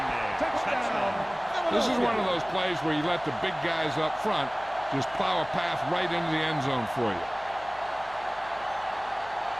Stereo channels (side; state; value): left; noise; hum, 22 dB below the sound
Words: there. Touchdown. This is one of those plays where you let the big guys up front just plow a path right into the end zone for you.